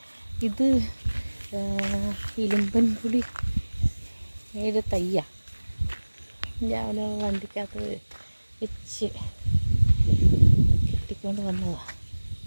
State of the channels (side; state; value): both; inverted; correlation -1.00